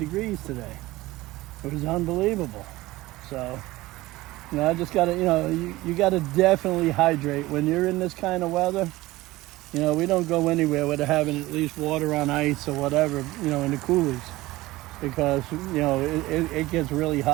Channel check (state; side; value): quieter; left; 18.7 dB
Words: today. It was unbelievable. So, you know, I just gotta, you know, you gotta definitely hydrate when you're in this kind of weather. You know, we don't go anywhere without having at least water on ice or whatever, you know, in the coolers, because, you know, it gets really